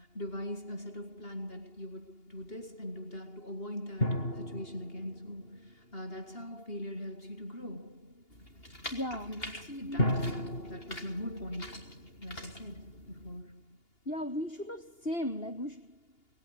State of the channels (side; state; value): right; late; 2.8 ms